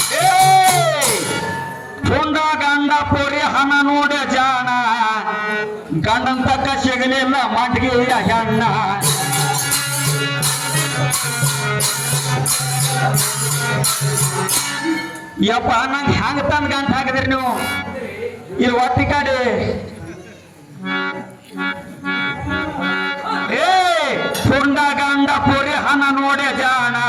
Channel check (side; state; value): both; identical; correlation 1.00